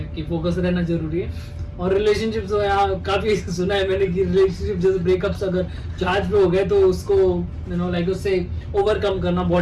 कि फोकस रहना जरूरी है। और रिलेशनशिप तो यहाँ काफी सुना है मैंने कि रिलेशनशिप जैसे ब्रेकअप्स अगर जहाज पे हो गए तो उसको लाइक उससे ओवरकम करना बहुत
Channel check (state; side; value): identical; both; correlation 1.00